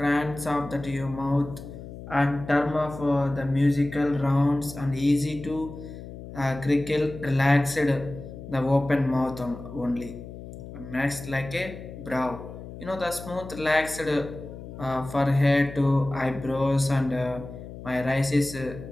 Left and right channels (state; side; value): noise; left; hum, 13 dB below the sound